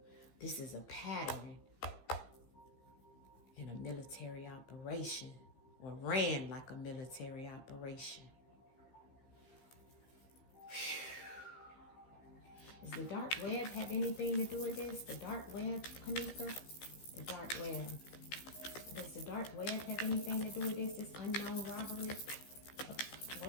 This is a pattern in a military operation, or ran like a military operation. Does the dark web have anything to do with this? The dark web, Kanika? The dark web. Does the dark web have anything to do with this? This unknown robbery?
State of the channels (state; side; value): late; right; 15 ms